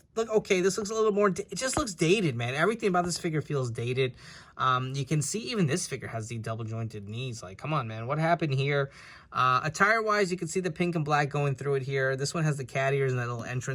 look okay. This looks a little more, it just looks dated, man. Everything about this figure feels dated. You can see even this figure has the double jointed knees. Like, come on, man, what happened here? Attire wise, you can see the pink and black going through it here. This one has the cat ears and that little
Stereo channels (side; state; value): both; identical; correlation 1.00